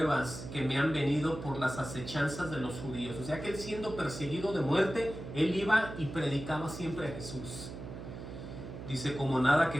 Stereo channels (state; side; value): noise; right; hum, 10 dB below the sound